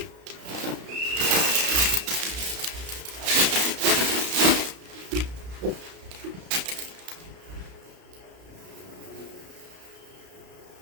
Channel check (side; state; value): left; late; 33 ms